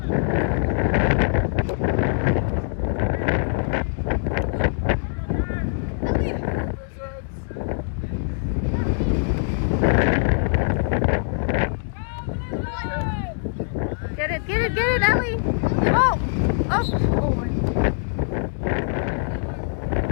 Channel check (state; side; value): silent; right; digital silence